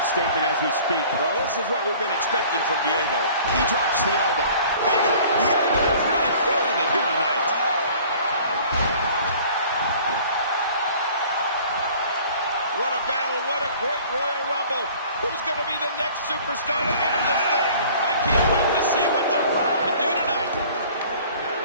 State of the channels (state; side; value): inverted; both; correlation -0.50